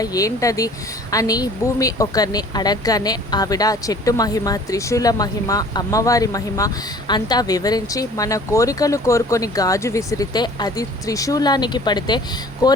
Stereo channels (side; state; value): both; normal; correlation 0.49